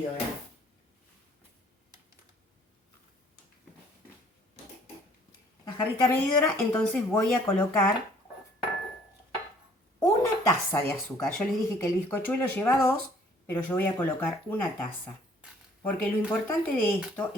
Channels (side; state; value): both; normal; correlation 0.58